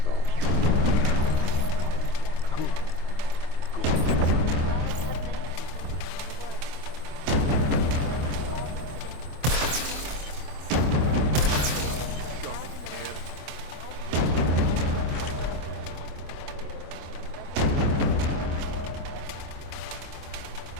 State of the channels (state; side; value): late; left; 25 ms